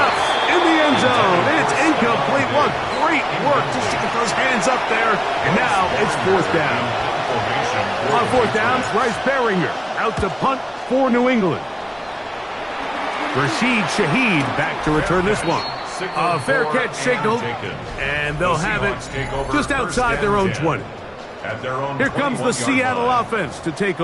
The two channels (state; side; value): identical; both; correlation 1.00